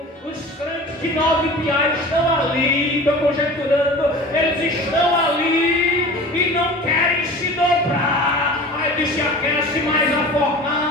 Os crentes de 9 piais estão ali, estou conjecturando, eles estão ali e não querem se dobrar. Aí disse: aquece mais a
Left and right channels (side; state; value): both; normal; correlation 0.38